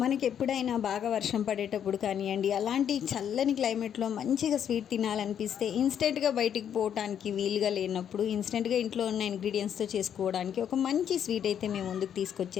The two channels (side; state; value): right; quieter; 9.0 dB